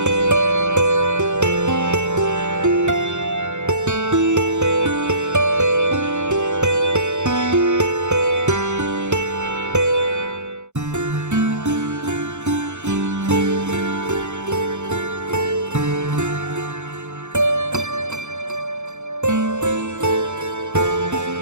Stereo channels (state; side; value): late; left; 0.84 ms